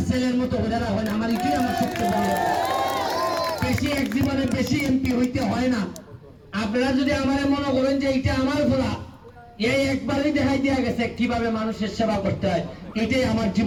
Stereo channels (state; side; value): identical; both; correlation 1.00